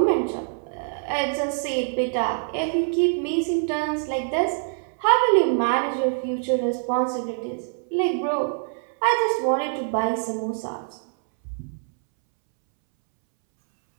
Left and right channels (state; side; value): silent; left; 62 dB below the other